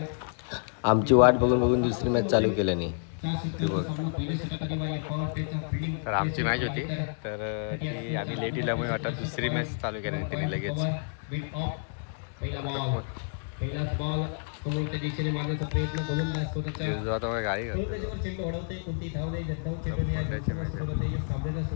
आमची वाट बघून बघून दुसरी मॅच चालू केल्याने ती बघ. तर आमची मॅच होती तर ती आम्ही लेट दिल्यामुळे वाटत दुसरी मॅच चालू केली त्यांनी लगेच.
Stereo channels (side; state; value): right; silent; digital silence